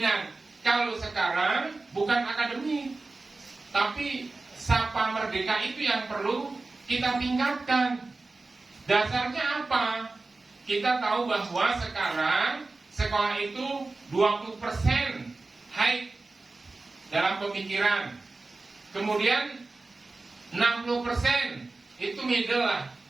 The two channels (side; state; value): left; quieter; 3.5 dB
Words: Kalau sekarang bukan akademik, tapi sapa merdeka itu yang perlu kita tingkatkan. Dasarnya apa? Kita tahu bahwa sekarang sekolah itu 20% high dalam pemikiran. Kemudian 60% itu middle lah